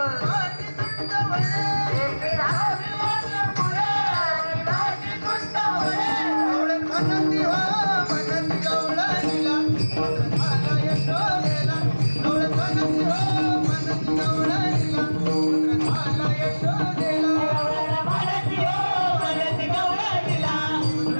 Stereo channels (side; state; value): both; inverted; correlation -1.00